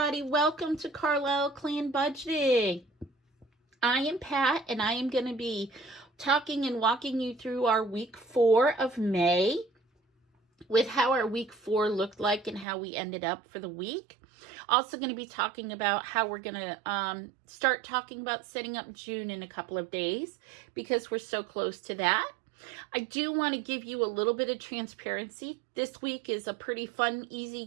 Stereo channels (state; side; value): drops out; left; at 12.7 s